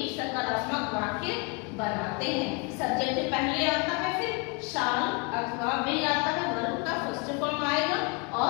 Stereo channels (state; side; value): quieter; right; 30.5 dB